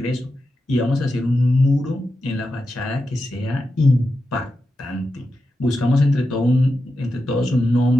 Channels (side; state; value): both; normal; correlation 0.89